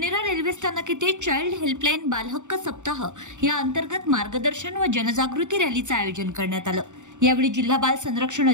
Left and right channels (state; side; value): late; left; 0.85 ms